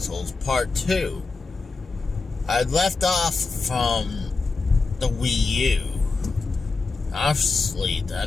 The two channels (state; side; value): quieter; right; 4.1 dB